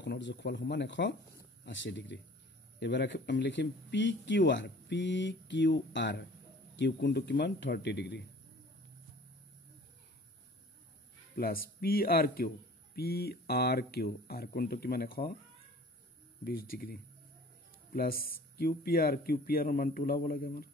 কোণৰ যোগফল সমান 180 ডিগ্ৰী এবাৰ আমি লিখিম পি কিউ আৰ কিউ কোণটো কিমান 30 degree plus P R Q R কোণটো কিমান 120 ডিগ্ৰী প্লাছ কিউ পি আৰৰ মানটো ওলাব লাগে আমাৰ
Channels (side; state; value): both; normal; correlation 0.47